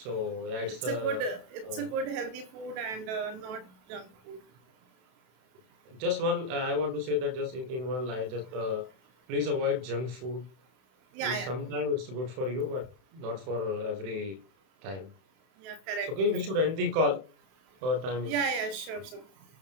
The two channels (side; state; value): left; late; 32 ms